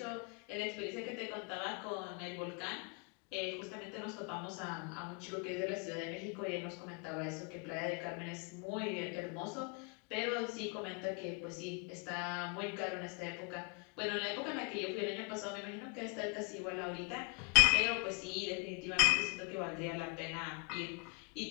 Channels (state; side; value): quieter; right; 33.4 dB